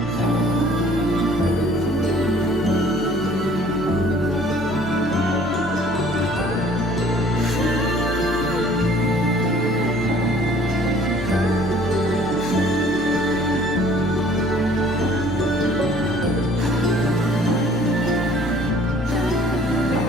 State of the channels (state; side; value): normal; both; correlation 0.54